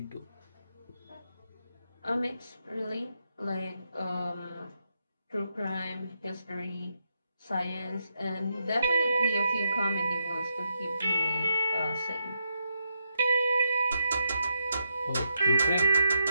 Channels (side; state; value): both; inverted; correlation -0.82